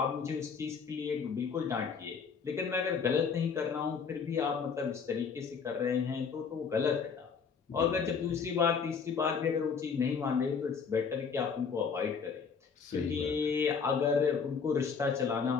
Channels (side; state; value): right; quieter; 5.9 dB